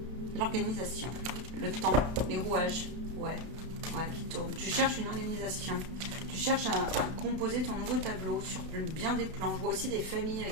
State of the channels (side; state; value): left; late; 32 ms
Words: l'organisation, le temps, les rouages. Ouais, qui tourne. Tu cherches une organisation. Tu cherches à composer ton nouveau tableau sur bien des plans. Je vois aussi des familles